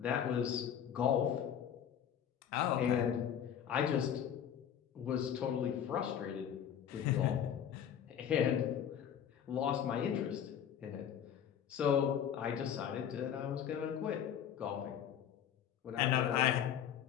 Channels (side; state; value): right; quieter; 9.2 dB